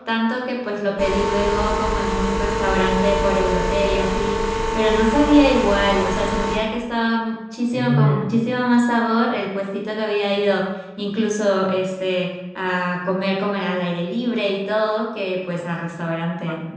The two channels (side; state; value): both; identical; correlation 1.00